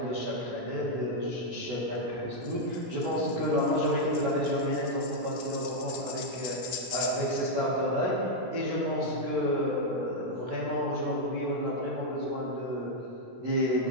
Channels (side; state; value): left; late; 16 ms